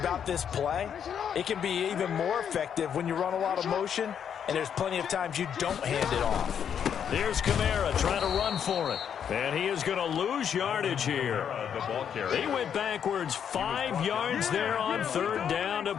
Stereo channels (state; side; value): quieter; right; 8.2 dB